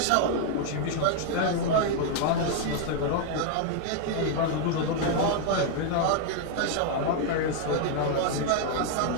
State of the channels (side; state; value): both; different; correlation 0.00